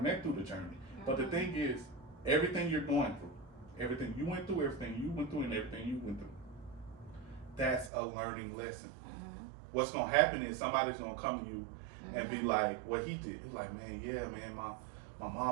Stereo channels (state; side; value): drops out; left; at 7.9 s